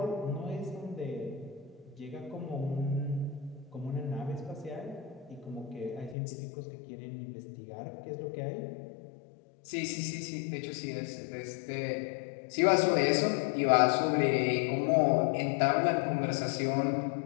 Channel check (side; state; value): right; drops out; at 6.2 s